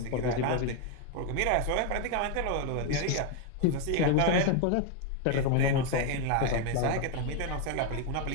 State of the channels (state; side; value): different; both; correlation 0.01